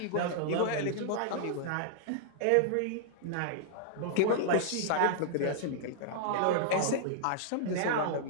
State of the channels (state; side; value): different; both; correlation -0.01